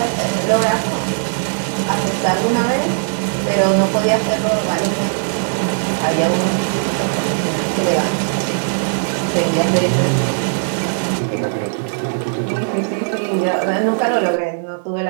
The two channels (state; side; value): silent; left; 67 dB below the other